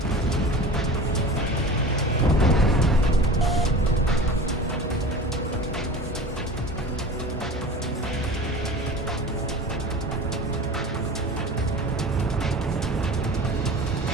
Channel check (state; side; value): normal; both; correlation 0.36